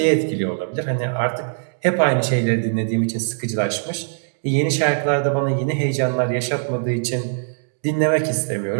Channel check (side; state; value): left; silent; digital silence